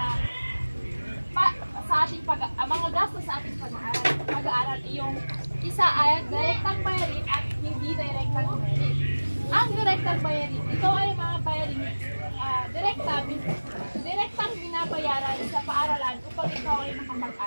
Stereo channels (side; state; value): both; inverted; correlation -1.00